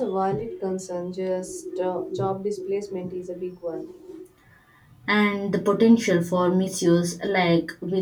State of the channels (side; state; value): both; identical; correlation 1.00